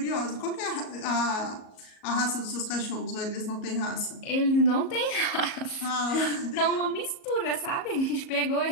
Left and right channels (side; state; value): right; late; 37 ms